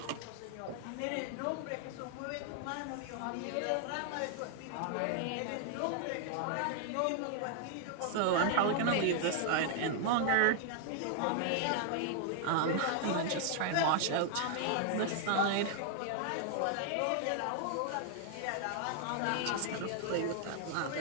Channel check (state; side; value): different; both; correlation 0.00